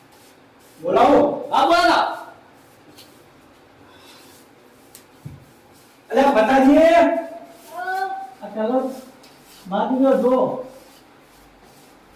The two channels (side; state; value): both; identical; correlation 1.00